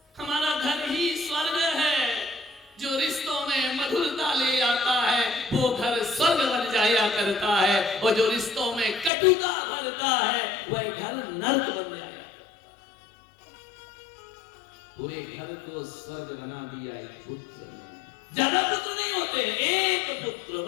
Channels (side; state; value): right; drops out; at 9.1 s